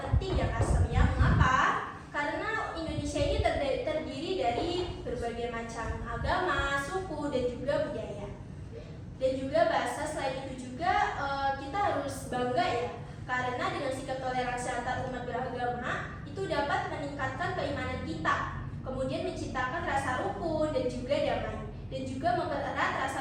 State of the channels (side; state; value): both; identical; correlation 1.00